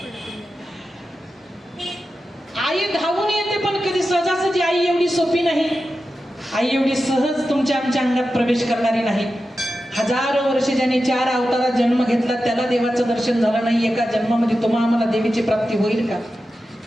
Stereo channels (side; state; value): both; normal; correlation 0.92